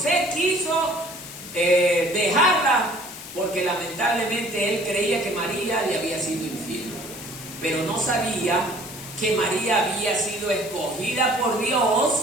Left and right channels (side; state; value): left; noise; hiss, 13 dB below the sound